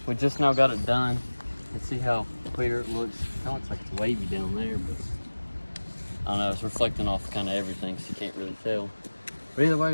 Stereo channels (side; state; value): both; inverted; correlation -1.00